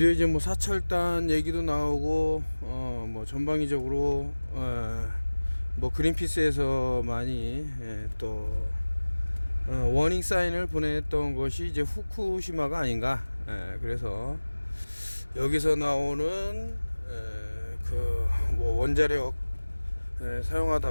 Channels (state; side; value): inverted; both; correlation -1.00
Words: 이제 뭐 사찰단 얘기도 나오고 뭐 전방위적으로 뭐 그린피스에서 많이 또 워닝 사인을 보냈던 것이 이제 후쿠시마가 아닌가. 그래서 여기서 나오는 그 뭐 원자력